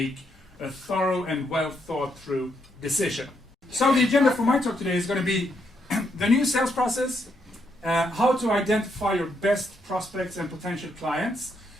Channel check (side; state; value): both; normal; correlation 0.77